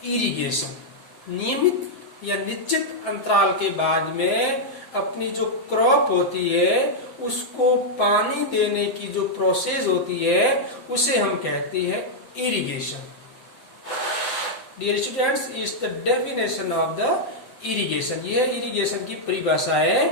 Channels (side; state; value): right; late; 7.6 ms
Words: irrigation. नियमित या निश्चित अंतराल के बाद में अपनी जो क्रॉप होती है उसको पानी देने की जो प्रोसेस होती है उसे हम कहते हैं irrigation. Dear students, is the definition of the irrigation. यह इरिगेशन की परिभाषा है.